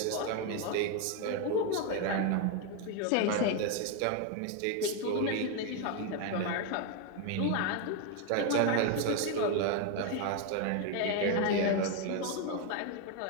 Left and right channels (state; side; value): different; both; correlation 0.01